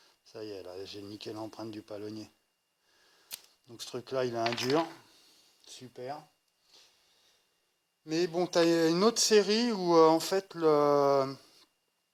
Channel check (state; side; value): identical; both; correlation 1.00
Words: ça y est, là j'ai niqué l'empreinte du palonnier. Donc ce truc là, il a un dur, super. Mais bon, tu as une autre série où en fait le